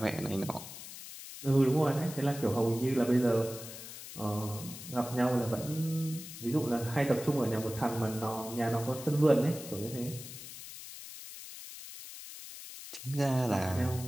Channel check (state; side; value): noise; left; hiss, 12 dB below the sound